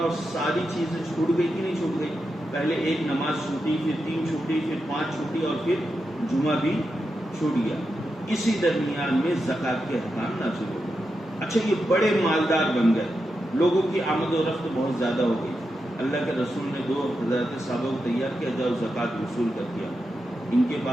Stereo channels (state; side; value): normal; both; correlation 0.88